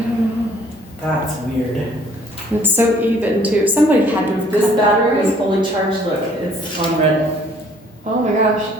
don't know. That's weird. It's so even too. Somebody had to have This cut that battery right. is fully charged. Look, it's on red. Oh my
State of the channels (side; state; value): both; normal; correlation 0.59